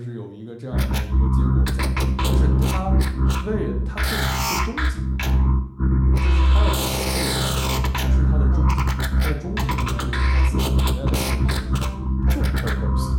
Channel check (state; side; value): identical; both; correlation 1.00